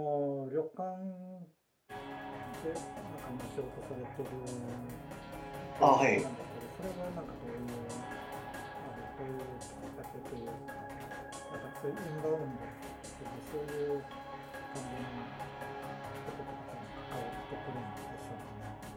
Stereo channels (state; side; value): identical; both; correlation 1.00